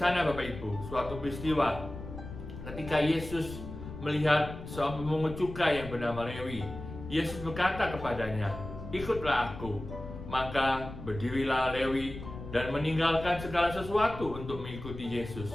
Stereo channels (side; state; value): left; noise; rumble, 11 dB below the sound